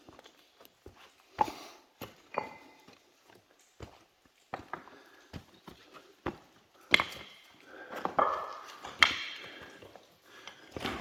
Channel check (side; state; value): both; identical; correlation 1.00